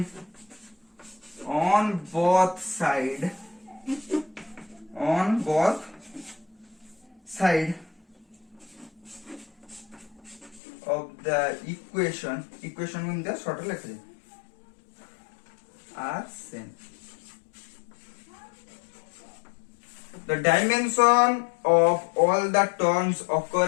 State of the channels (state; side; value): drops out; right; at 10.6 s